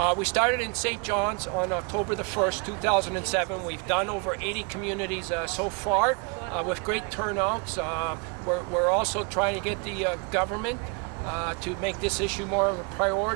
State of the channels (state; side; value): quieter; left; 34.0 dB